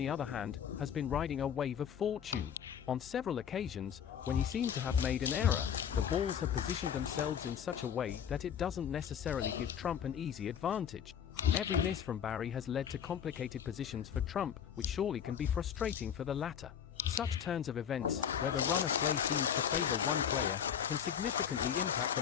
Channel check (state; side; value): quieter; right; 8.4 dB